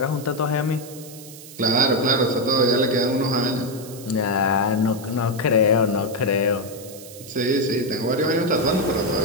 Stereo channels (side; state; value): right; noise; hiss, 17 dB below the sound